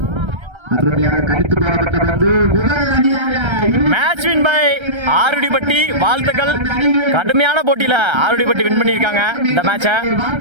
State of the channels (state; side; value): late; left; 1.3 ms